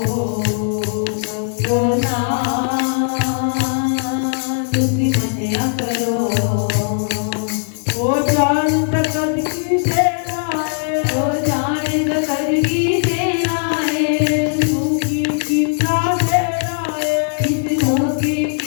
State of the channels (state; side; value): silent; right; digital silence